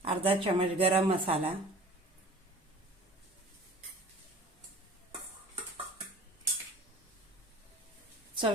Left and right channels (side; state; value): both; normal; correlation 0.43